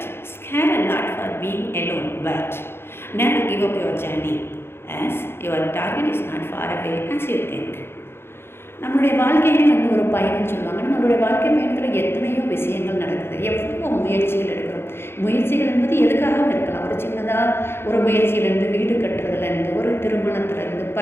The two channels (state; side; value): late; right; 0.11 ms